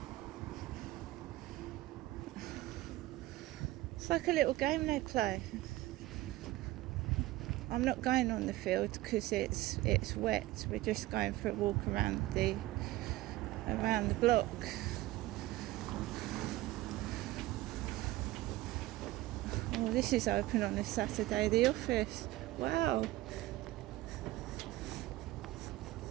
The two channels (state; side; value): quieter; left; 17.4 dB